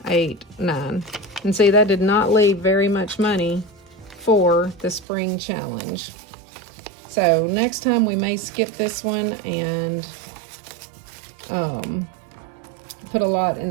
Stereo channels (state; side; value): drops out; left; at 5.1 s